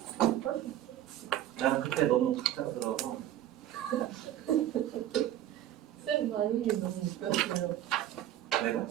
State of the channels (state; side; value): quieter; left; 12.3 dB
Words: 나는 그때 너무 갑작스러워서 쌤 반응이 너무 웃겼어요. 내가